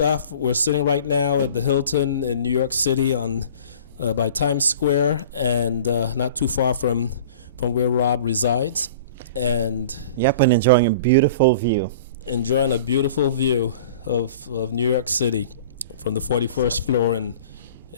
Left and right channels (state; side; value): inverted; both; correlation -0.42